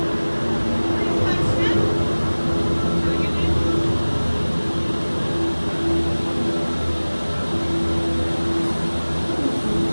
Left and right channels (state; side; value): inverted; both; correlation -1.00